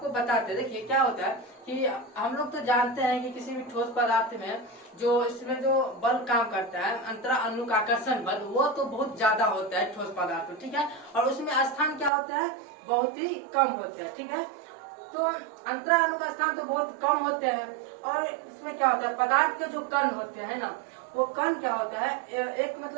बताते हैं, देखिए क्या होता है कि हम लोग तो जानते हैं कि किसी भी ठोस पदार्थ में जो इसमें जो बल काम करता है, अंतरा अनुक आकर्षण बल, वो तो बहुत ज्यादा होता है ठोस पदार्थ में, ठीक है, और उसमें स्थान क्या होता है, बहुत ही कम होता है, ठीक है। तो अंतरा अनुक स्थान तो बहुत कम होते हैं, और इसमें क्या होता है, पदार्थ के जो कण होते हैं ना, वो कण क्या होता है, एक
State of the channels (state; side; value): drops out; left; at 12.1 s